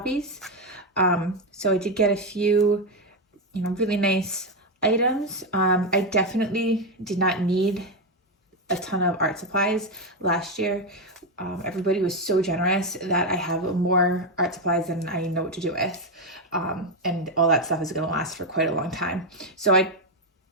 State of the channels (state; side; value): normal; both; correlation 0.07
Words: So I did get a few, really nice items. I definitely did not need a ton of art supplies last year. Everybody was so generous that I have more art supplies than I know what to do with. And all that stuff is going to last for quite a long time. So I